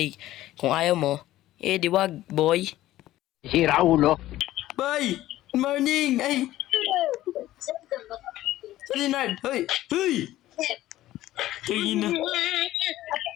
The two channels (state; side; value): quieter; right; 14.9 dB